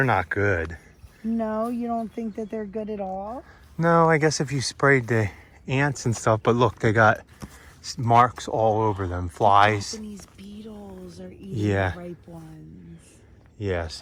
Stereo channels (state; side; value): identical; both; correlation 1.00